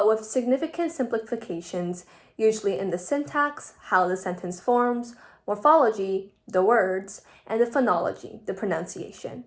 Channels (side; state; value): both; identical; correlation 1.00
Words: with significant simplifications, usually in the syntax, how the sentence forms, morphology, the words, and the phonology, the pronunciation.